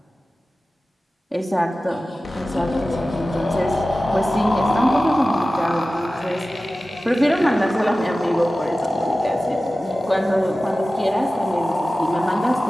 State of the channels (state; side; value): normal; both; correlation 0.96